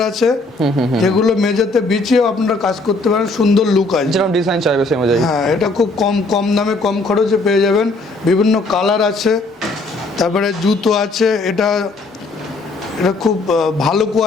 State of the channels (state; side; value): quieter; right; 3.2 dB